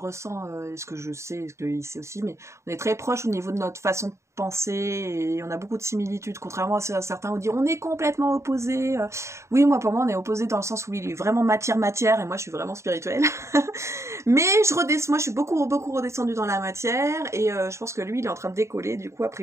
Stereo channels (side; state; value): left; late; 0.14 ms